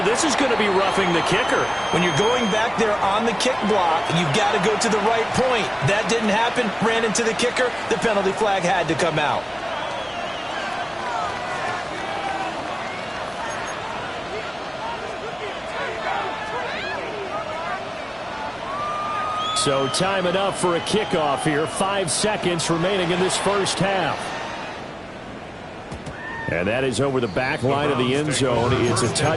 This is going to be roughing the kicker. When you're going back there on the kick block, you've got to go to the right point. That didn't happen. Ran into the kicker. The penalty flag had to come out. So time enough for a kickoff here. 5 seconds remaining in this first half. And that is over the back line of the end zone. It's a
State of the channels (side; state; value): both; identical; correlation 1.00